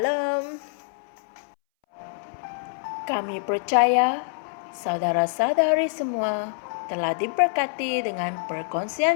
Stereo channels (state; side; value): silent; right; 61 dB below the other